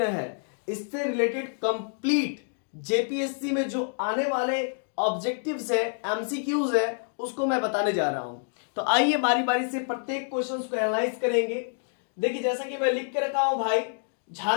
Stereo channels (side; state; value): right; silent; digital silence